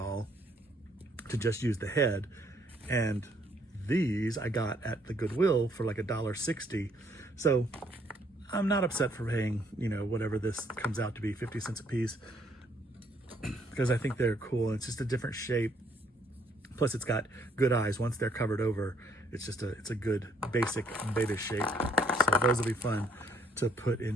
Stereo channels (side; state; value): both; normal; correlation 0.67